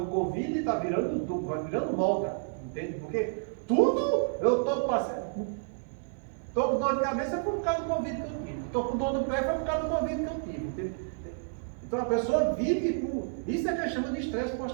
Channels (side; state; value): left; silent; 58 dB below the other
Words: do Covid está virando moda, entende? Porque tudo eu estou passando. Estou com dor de cabeça foi por causa do Covid que eu tive. Estou com dor no pé foi por causa do Covid que eu tive. Entende? Então a pessoa vive com. Isso é que a gente chama de estresse